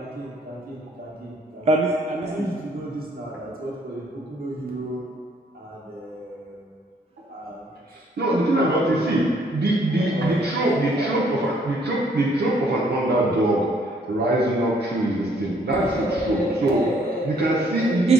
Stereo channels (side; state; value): both; normal; correlation 0.64